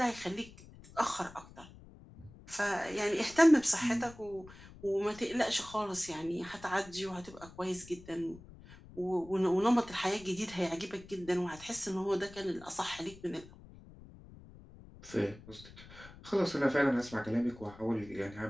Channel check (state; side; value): noise; left; rumble, 19 dB below the sound